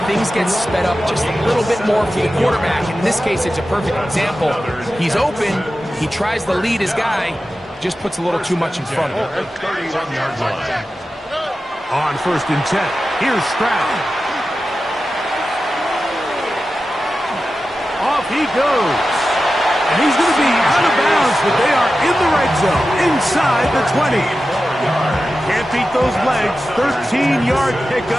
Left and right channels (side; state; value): both; normal; correlation 0.93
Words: things get sped up just a little bit more for the quarterback. In this case, it's a perfect example. He's open, he tries to lead his guy, just puts a little too much in front of him. On first and 10, here's Stroud. Off he goes. And he's going to be out of bounds, but they are in the red zone, inside the 20. Can't beat those legs. 13-yard